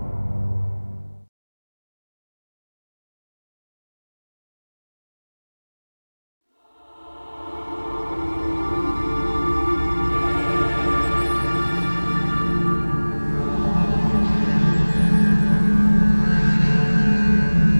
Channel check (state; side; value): inverted; both; correlation -1.00